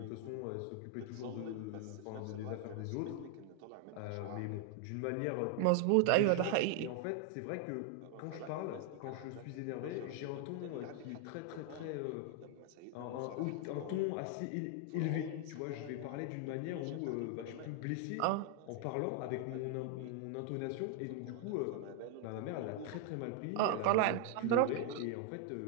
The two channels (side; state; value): both; different; correlation 0.00